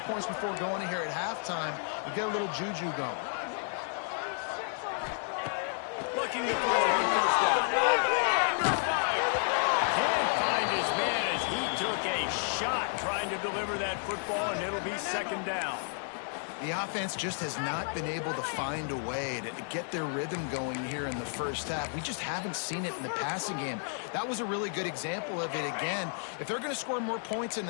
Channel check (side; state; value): right; silent; 57 dB below the other